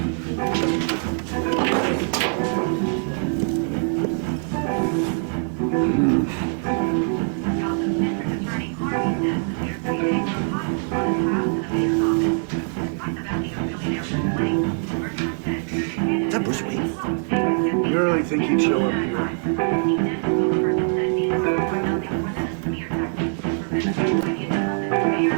That was me. You really think he'd show up here?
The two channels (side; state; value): left; silent; 56 dB below the other